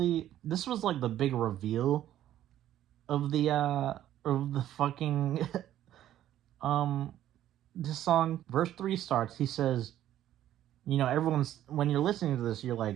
this was like the big reveal of the fucking this song. Verse 3 starts, he says, everyone's, when you're listening to this, you're like,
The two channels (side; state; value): left; quieter; 12.2 dB